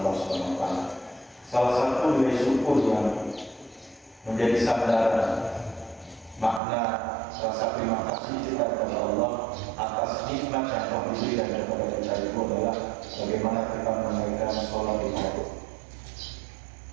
Subhanahu wa taala. Salah satu nilai syukur yang menjadi sandaran makna rasa terima kasih kita kepada Allah atas nikmat yang telah diberikan kepada kita itu adalah bagaimana kita menunaikan sholat di waktu.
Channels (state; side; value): drops out; left; at 6.6 s